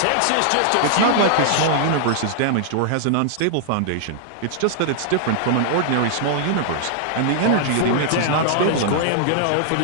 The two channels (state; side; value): different; both; correlation -0.01